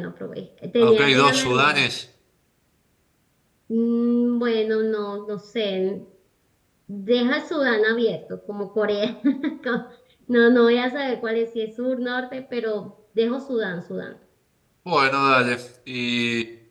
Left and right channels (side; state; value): both; identical; correlation 1.00